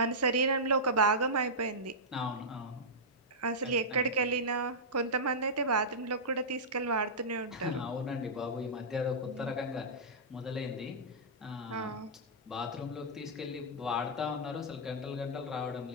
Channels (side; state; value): both; normal; correlation -0.13